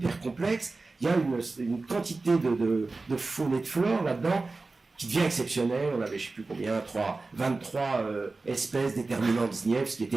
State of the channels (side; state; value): left; quieter; 3.6 dB